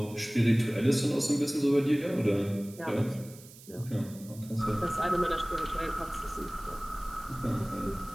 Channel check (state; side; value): noise; right; hiss, 20 dB below the sound